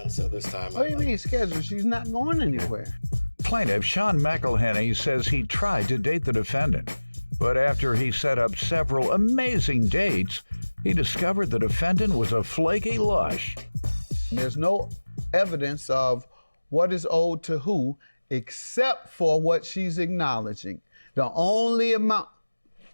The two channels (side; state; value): both; inverted; correlation -1.00